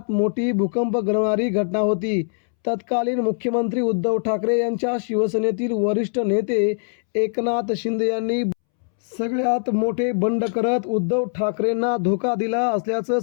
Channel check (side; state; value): right; silent; 64 dB below the other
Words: मोठी भूकंप घडवणारी घटना होती. तत्कालीन मुख्यमंत्री उद्धव ठाकरे यांच्या शिवसेनेतील वरिष्ठ नेते एकनाथ शिंदे यांनी सगळ्यात मोठे बंड करत उद्धव ठाकरेंना धोका दिला असल्याचं